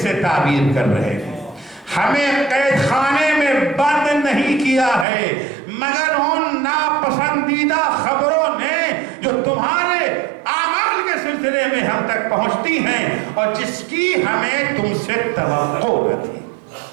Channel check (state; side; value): drops out; left; at 5.1 s